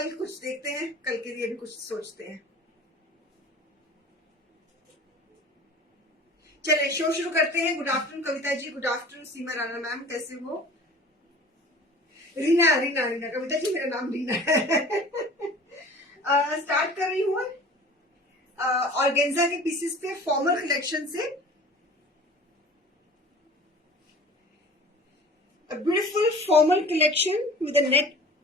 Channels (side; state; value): both; normal; correlation 0.43